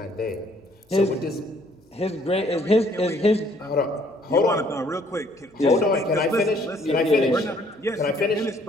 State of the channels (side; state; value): both; normal; correlation 0.63